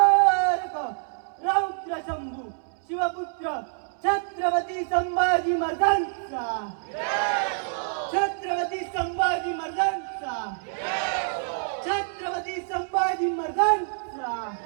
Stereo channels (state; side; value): silent; left; 61 dB below the other